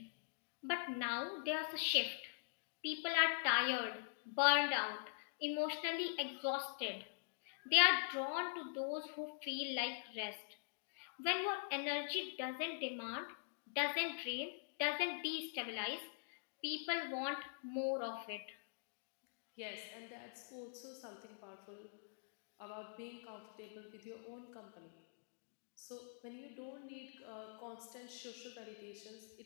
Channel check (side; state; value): right; silent; digital silence